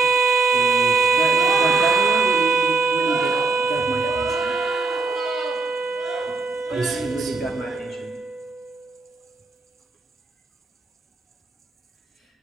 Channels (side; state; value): left; quieter; 4.0 dB